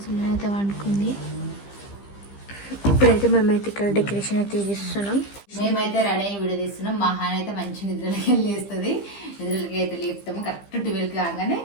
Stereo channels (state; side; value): late; right; 15 ms